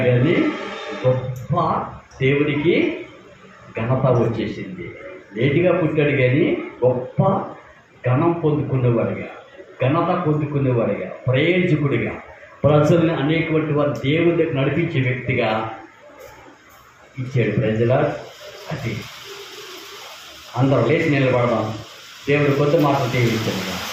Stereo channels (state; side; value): identical; both; correlation 1.00